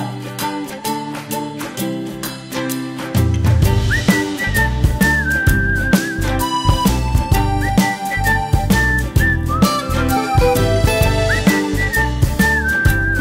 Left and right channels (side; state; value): both; identical; correlation 1.00